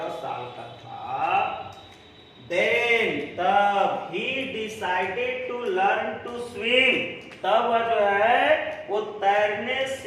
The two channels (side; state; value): both; identical; correlation 1.00